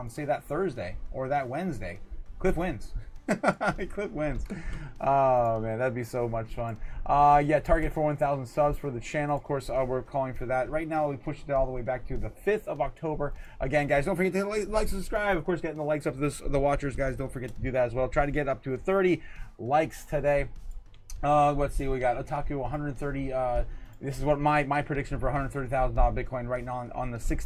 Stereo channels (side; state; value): both; identical; correlation 1.00